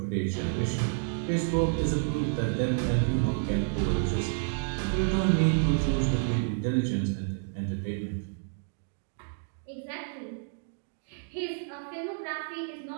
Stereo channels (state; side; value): silent; left; digital silence